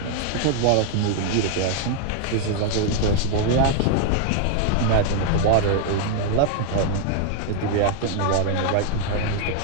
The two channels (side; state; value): both; different; correlation 0.00